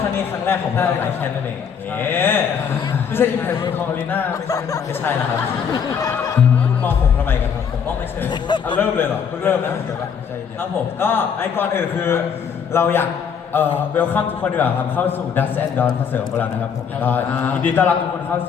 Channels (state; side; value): quieter; right; 7.0 dB